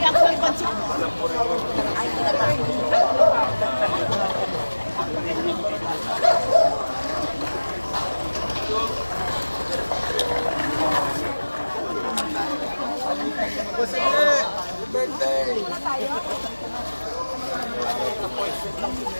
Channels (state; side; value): inverted; both; correlation -1.00